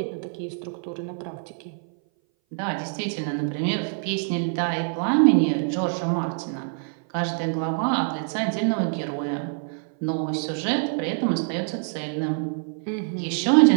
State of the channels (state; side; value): silent; left; 58 dB below the other